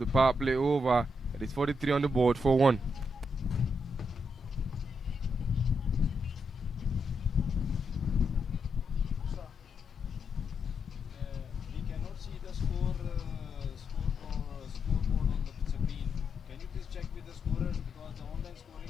power play over. It is 43 on the board for 1. We cannot see the scoreboard on the screen. Can you please check with the scorers because the online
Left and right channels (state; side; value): normal; both; correlation 0.82